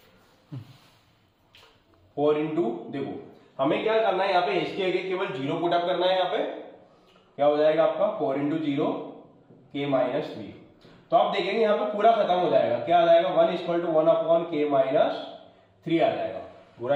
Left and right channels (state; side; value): identical; both; correlation 1.00